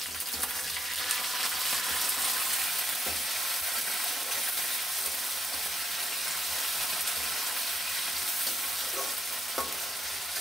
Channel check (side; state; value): both; normal; correlation 0.78